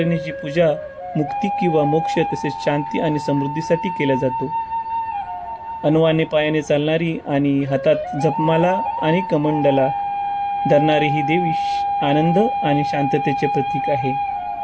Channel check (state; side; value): identical; both; correlation 1.00